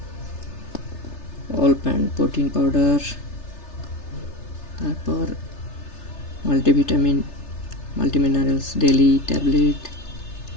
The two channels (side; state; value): right; late; 3.3 ms